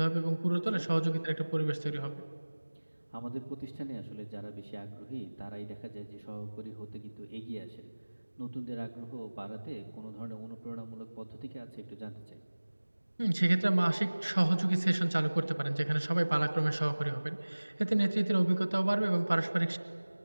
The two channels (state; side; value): inverted; both; correlation -1.00